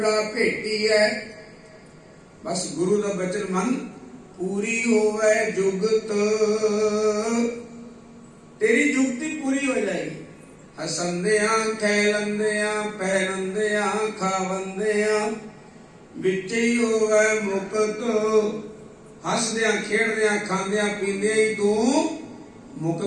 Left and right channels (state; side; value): identical; both; correlation 1.00